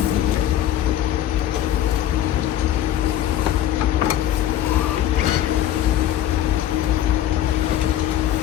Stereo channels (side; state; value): right; quieter; 11.8 dB